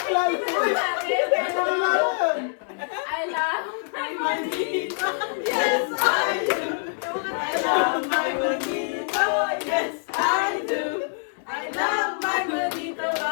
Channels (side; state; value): right; silent; 62 dB below the other